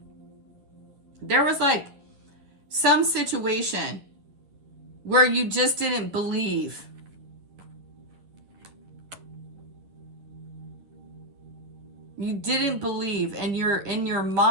there was like some situation where you just didn't believe. You didn't believe, and you're in your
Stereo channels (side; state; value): left; late; 10 ms